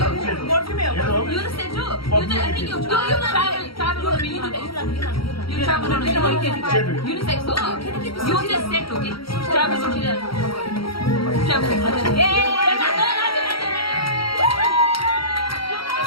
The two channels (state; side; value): late; right; 0.75 ms